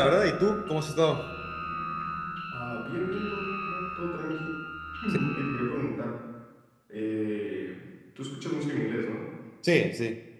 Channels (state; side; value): identical; both; correlation 1.00